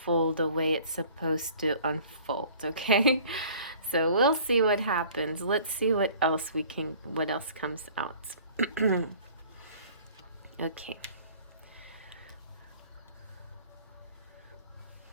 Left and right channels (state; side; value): inverted; both; correlation -0.50